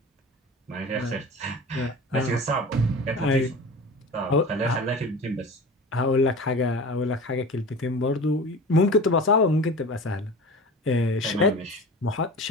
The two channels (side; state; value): both; normal; correlation 0.35